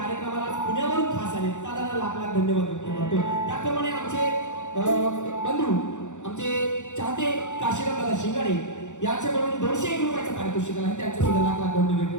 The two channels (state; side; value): late; right; 0.85 ms